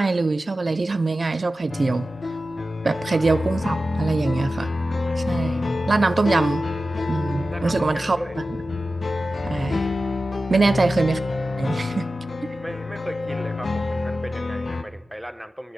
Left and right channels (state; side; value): normal; both; correlation 0.94